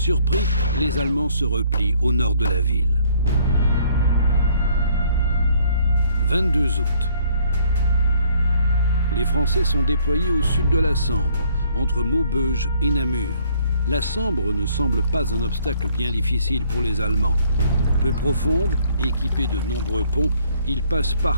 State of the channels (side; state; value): both; inverted; correlation -0.62